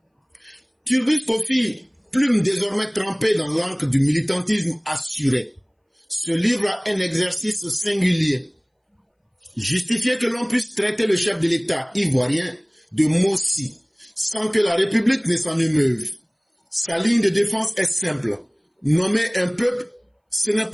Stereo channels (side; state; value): both; identical; correlation 1.00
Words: Turbus Kofi, plume désormais trempée dans l'encre du militantisme assuré, se livre à un exercice singulier. Justifier que l'on puisse traiter le chef de l'État ivoirien de Mossi, sans que la République ne s'en émeuve. Sa ligne de défense est simple. Nommer un peuple, ce n'est